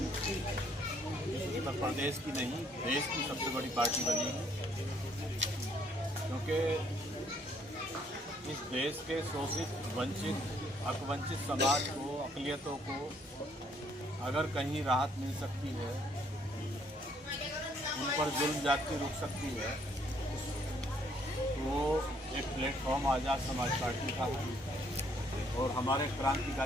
उत्तर प्रदेश की नहीं, देश की सबसे बड़ी पार्टी बनेगी, क्योंकि इस देश के शोषित, वंचित, हकवंचित समाज को, अक़लियतों को अगर कहीं राहत मिल सकती है, उन पर जुल्म ज्यादती रुक सकती है, तो एक प्लेटफॉर्म आज़ाद समाज पार्टी का है। और हमारे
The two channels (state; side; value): normal; both; correlation 0.66